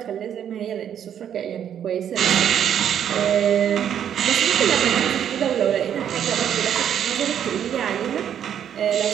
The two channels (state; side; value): quieter; left; 9.3 dB